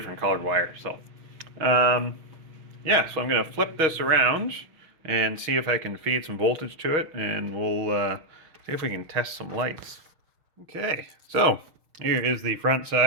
colored wires, so yeah, so I'm going to flip this around and see if I can feed some voltage to it, and we'll see if we can test some lights. Okay, so here is the front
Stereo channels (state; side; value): late; left; 6.5 ms